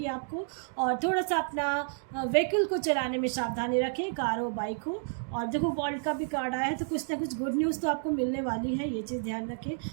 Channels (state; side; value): silent; left; digital silence